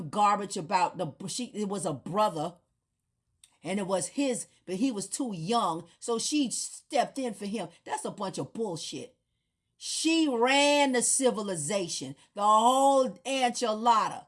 garbage about it was a brother and it was his, but he was too young, so she stepped in for him. That's a bunch of bullshit. She ran the civilization, the whole enchilada.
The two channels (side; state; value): both; identical; correlation 1.00